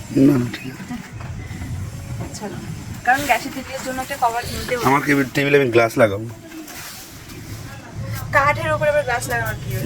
না না ঠিক আছে। চলো, কারণ গ্যাসের টেবিলের জন্য একটা কভার কিনতে হবে। আমার টেবিলে আমি গ্লাস লাগাবো। কাঠের উপরে আবার গ্লাস লাগানোর কি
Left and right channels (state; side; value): identical; both; correlation 1.00